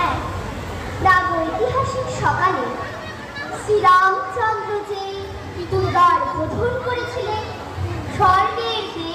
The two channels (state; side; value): identical; both; correlation 1.00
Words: এক প্রাগৈতিহাসিক সকালে শ্রীরামচন্দ্র যে দ্বার বোধন করেছিলেন, স্বর্গের